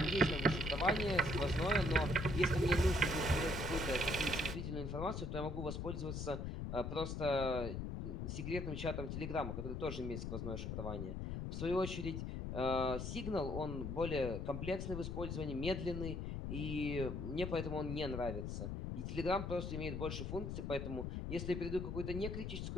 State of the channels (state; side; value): noise; left; rumble, 4 dB below the sound